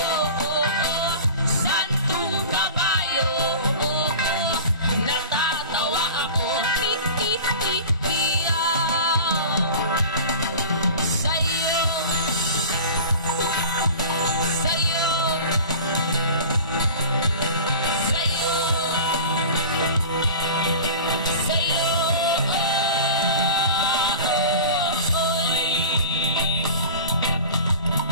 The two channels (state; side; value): inverted; both; correlation -0.37